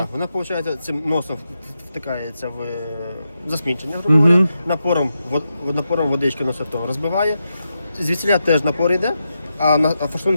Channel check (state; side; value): inverted; both; correlation -0.87